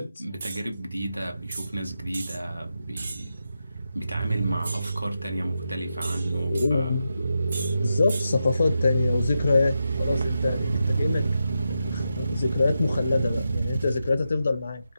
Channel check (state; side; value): inverted; both; correlation -0.87